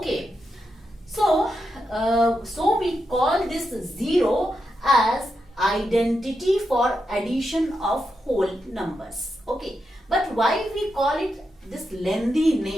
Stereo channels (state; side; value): normal; both; correlation 0.86